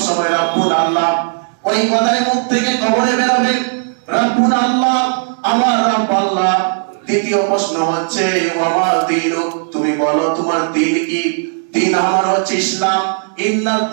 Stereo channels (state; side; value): silent; left; digital silence